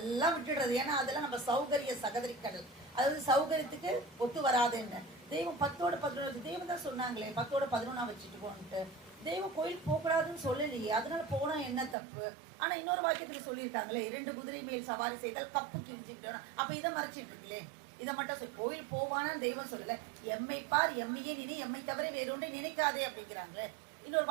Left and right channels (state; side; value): drops out; left; at 12.0 s